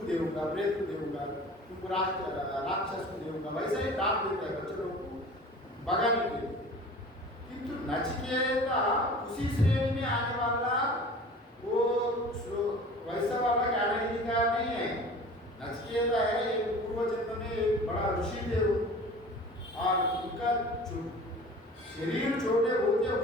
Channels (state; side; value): normal; both; correlation 0.41